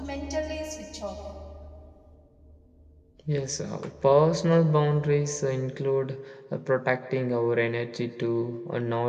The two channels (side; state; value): both; identical; correlation 1.00